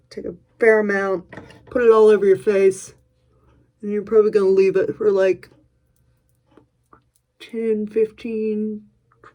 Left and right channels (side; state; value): both; identical; correlation 1.00